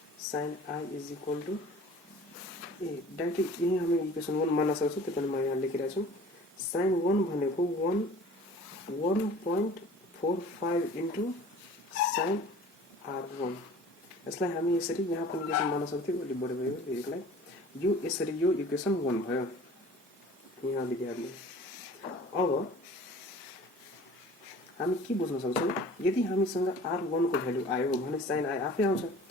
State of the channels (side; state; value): both; normal; correlation 0.46